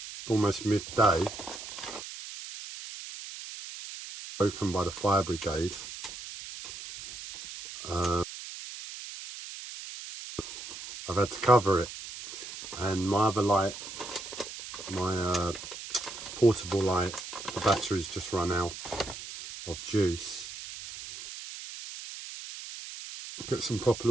almost midday, broken by the fire brigade. I've had to cover it, and my other light, my portable light, the battery's just run out of juice. Get some proper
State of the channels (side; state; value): right; noise; hiss, 11 dB below the sound